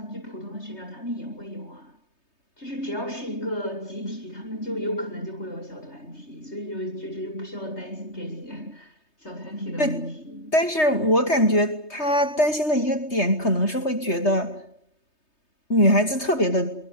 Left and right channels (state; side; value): late; right; 3.3 ms